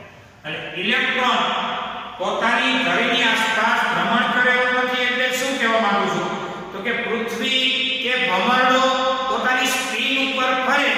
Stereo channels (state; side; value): identical; both; correlation 1.00